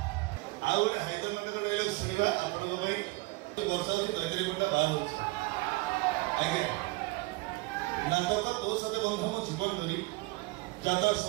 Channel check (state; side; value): quieter; left; 23.0 dB